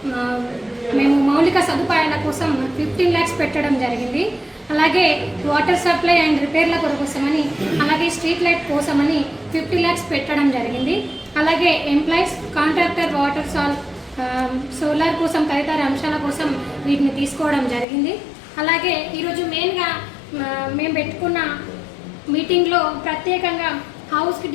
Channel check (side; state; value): right; drops out; at 17.9 s